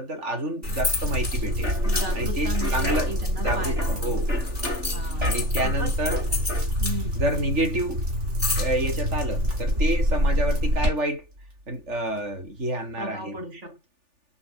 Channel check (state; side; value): late; left; 3.4 ms